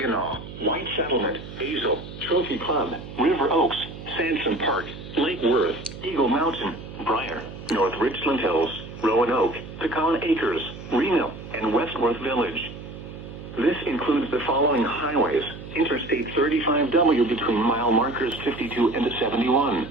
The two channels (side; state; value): right; noise; hum, 13 dB below the sound